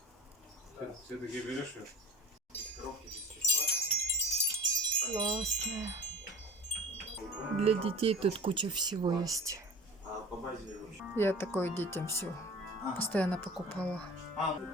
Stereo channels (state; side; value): normal; both; correlation 0.37